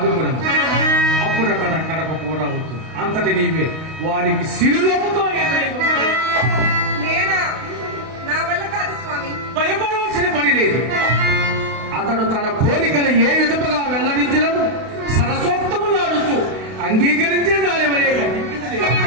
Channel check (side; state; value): left; late; 32 ms